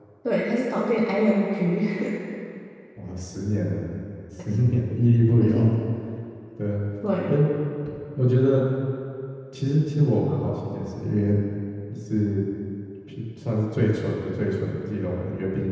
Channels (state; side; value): identical; both; correlation 1.00